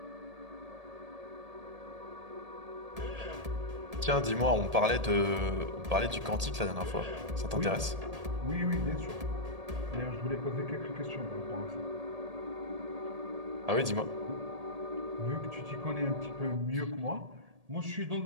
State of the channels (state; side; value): late; left; 1.8 ms